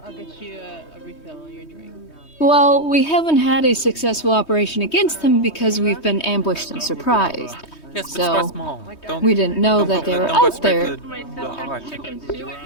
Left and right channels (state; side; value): late; right; 3.2 ms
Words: get you a refill on your drink. Well, we haven't had a successful operation against them because we've been ambushed and surprised. Yes, but so start small. We didn't know that they were out there.